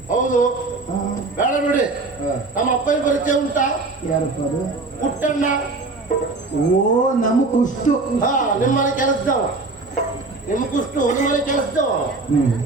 ಹೌದು. ಬೇಡ ಬಿಡಿ. ನಮ್ಮ ಅಪ್ಪನ ಪರಿಚಯ ಉಂಟಾ? ಯಾರಪ್ಪ ಅದು? ಪುಟ್ಟಣ್ಣ. ಓ, ನಮ್ಮ ಕುಷ್ಟು. ಹಾ, ನಿಮ್ಮನೆ ಕೆಲಸದವ. ನಿಮ್ಮ ಕುಷ್ಟು ನಿಮ್ಮನೆ ಕೆಲಸದವ.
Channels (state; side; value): quieter; left; 3.5 dB